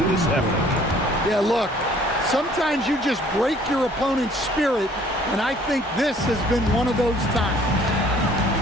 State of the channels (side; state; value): both; normal; correlation 0.57